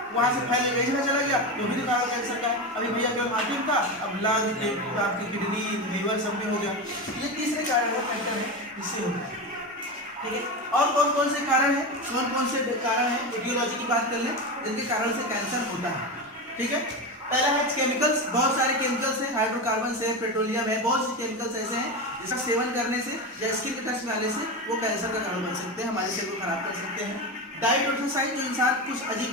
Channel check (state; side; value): normal; both; correlation 0.19